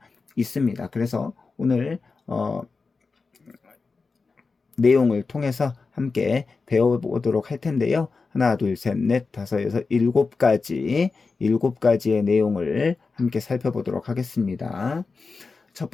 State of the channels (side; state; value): right; quieter; 4.4 dB